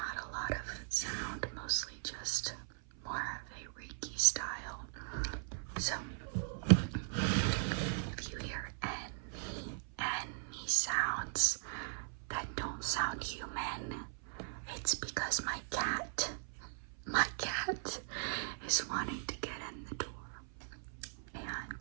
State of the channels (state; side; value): silent; left; 52 dB below the other